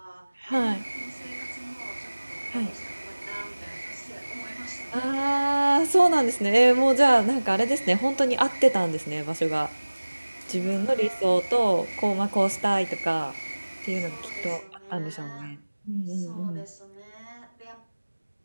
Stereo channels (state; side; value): inverted; both; correlation -1.00